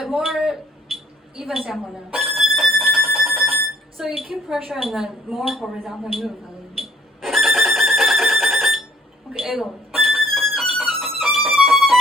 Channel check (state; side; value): normal; both; correlation 0.61